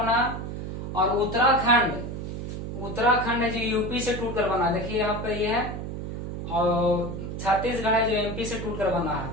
है। और उत्तराखंड है जो यूपी से टूटकर बना है। देखिए यहाँ पे ये है। और छत्तीसगढ़ है जो एमपी से टूटकर बना है।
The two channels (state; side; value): noise; right; hum, 6 dB below the sound